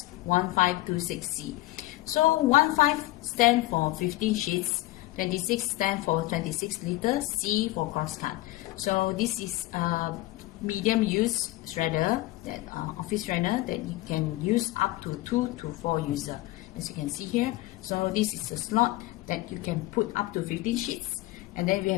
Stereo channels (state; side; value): quieter; right; 18.3 dB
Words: So 15 stand for 15 sheets, 26 stand for 26 liters, C for crosscut. So this is a medium use shredder, that office shredder that you can use up to 2 to 4 users, as you can see here. So this is a slot that you can put up to 15 sheets, and then we